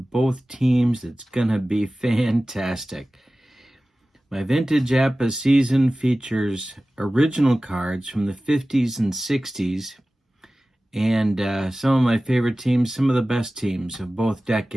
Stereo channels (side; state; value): both; normal; correlation 0.96